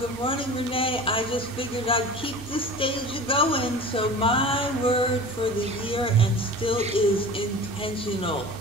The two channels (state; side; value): normal; both; correlation 0.37